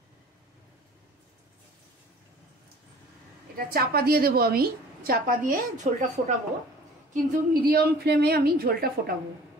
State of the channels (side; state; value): both; normal; correlation 0.48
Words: এটা চাপা দিয়ে দেব। আমি চাপা দিয়ে ঝোলটা ফোটাবো, কিন্তু মিডিয়াম ফ্লেমে আমি ঝোলটা ফোটাবো।